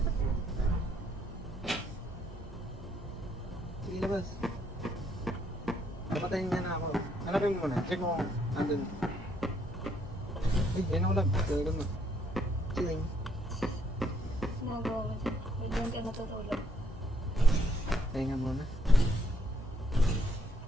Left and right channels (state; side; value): normal; both; correlation 0.70